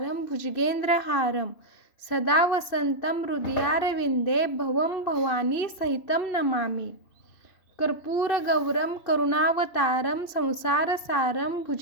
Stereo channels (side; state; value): right; late; 2.7 ms